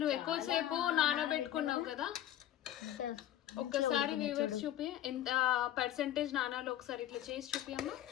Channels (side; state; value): right; quieter; 12.4 dB